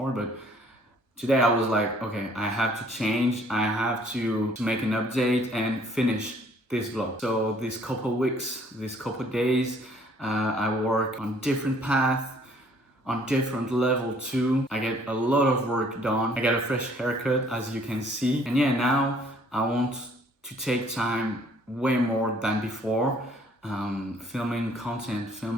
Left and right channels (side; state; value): both; normal; correlation 0.60